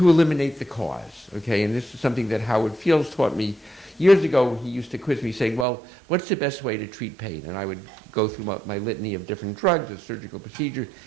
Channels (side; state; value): left; drops out; at 5.7 s